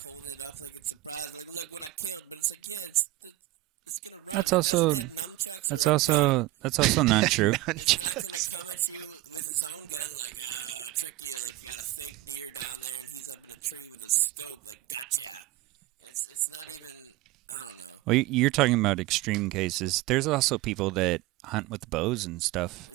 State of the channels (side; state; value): left; quieter; 17.7 dB